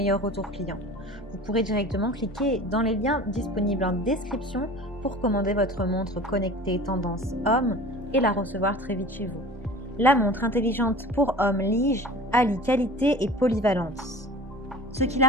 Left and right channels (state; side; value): normal; both; correlation 0.40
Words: retours clients. Vous pourrez directement cliquer dans les liens disponibles en description pour commander votre montre connectée tendance homme et la recevoir très vite chez vous. La montre intelligente pour homme Lige allie qualité et polyvalence, ce qui